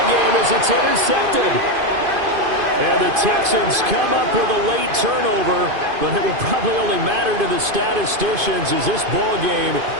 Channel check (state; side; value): late; left; 2.5 ms